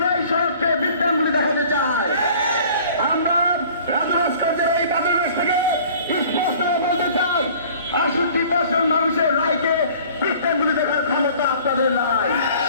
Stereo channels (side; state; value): both; inverted; correlation -0.50